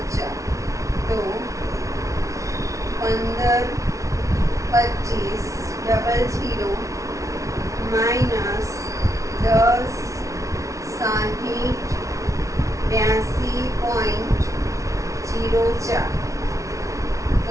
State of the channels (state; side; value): late; left; 0.15 ms